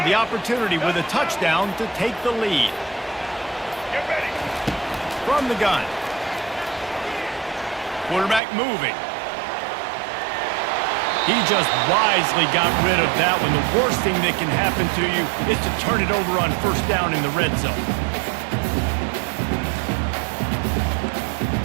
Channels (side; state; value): left; drops out; at 8.4 s